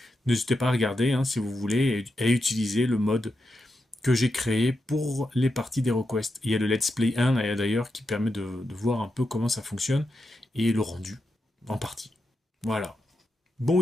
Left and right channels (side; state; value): both; normal; correlation 0.87